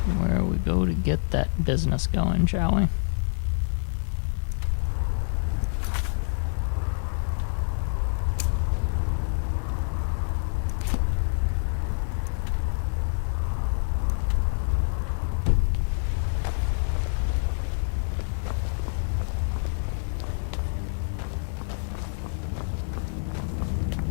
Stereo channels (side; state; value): right; silent; digital silence